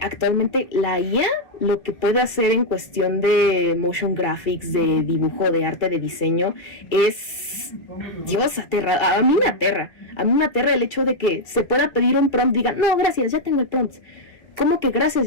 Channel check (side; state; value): right; late; 1.9 ms